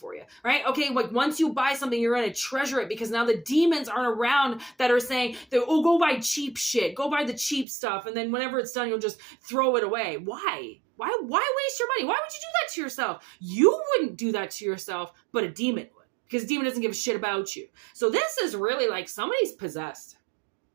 you, right? Okay, like once you buy something, you're going to treasure it because now the demons aren't around that are saying, go buy cheap shit, go buy the cheap stuff, and then whenever it's done, you'll just throw it away. Why? Why waste your money? Why would you do that to yourself? You wouldn't do that to yourself, but a demon would. Because a demon doesn't give a shit about you. So this is really like somebody's possessed.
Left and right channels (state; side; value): drops out; left; at 7.7 s